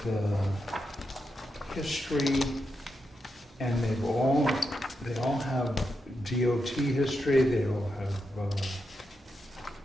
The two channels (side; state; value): both; normal; correlation 0.86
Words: history, and they all have DOT history. They all have